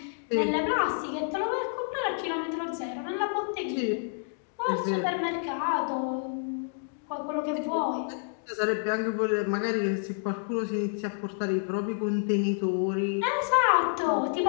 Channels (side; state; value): right; silent; digital silence